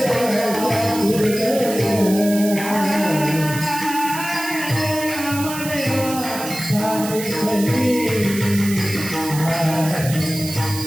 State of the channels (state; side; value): noise; right; hiss, 9 dB below the sound